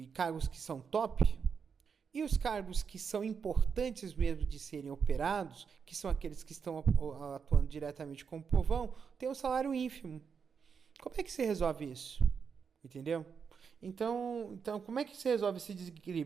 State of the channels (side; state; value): left; quieter; 6.3 dB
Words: cargos que são top, e os cargos que são importantes mesmo de serem operados, que são aqueles que estão atuando diretamente com o povão, tem um salário ínfimo. Como é que se resolve isso? Entendeu? Então, como é que se resolve esse